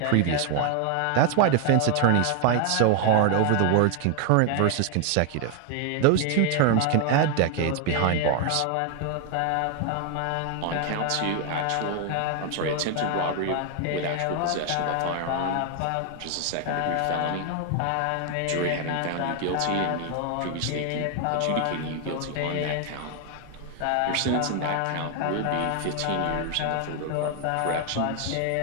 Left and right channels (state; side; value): different; both; correlation 0.01